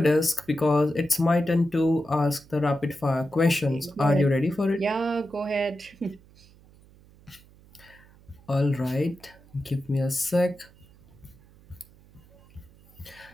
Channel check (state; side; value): noise; right; hum, 26 dB below the sound